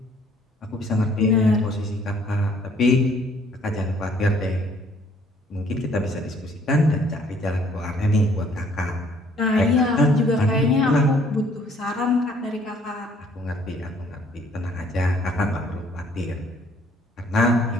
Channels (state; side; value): normal; both; correlation 0.61